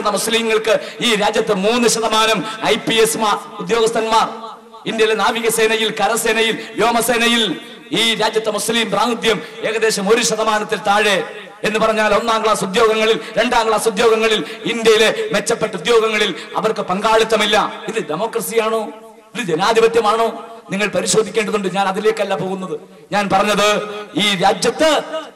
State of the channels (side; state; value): both; identical; correlation 1.00